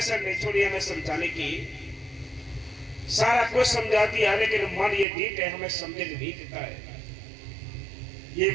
नहीं छोड़ी हमें समझाने की, सारा कुछ समझा दिया, लेकिन मन ये ढीठ है, हमें समझने नहीं देता है। ये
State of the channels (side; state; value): left; drops out; at 5.1 s